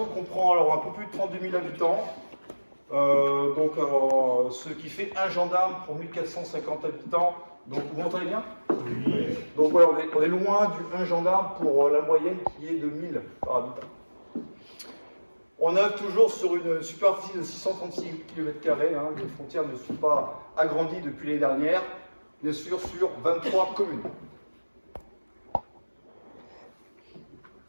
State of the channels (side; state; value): both; inverted; correlation -1.00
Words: comprend alors un peu plus de 32 000 habitants, ce qui fait un gendarme pour 1450 habitants. Donc vous m'entendez bien? Oui. Donc voilà, on est loin du 1 gendarme pour la moyenne qui est de 1000 par habitant. On œuvre toujours sur une superficie de 636 km², les frontières ne sont pas agrandies depuis l'année dernière, bien sûr sur 23 communes.